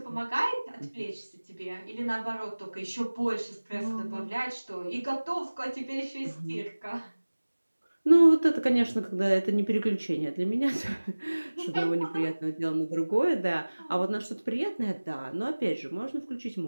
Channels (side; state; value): both; inverted; correlation -1.00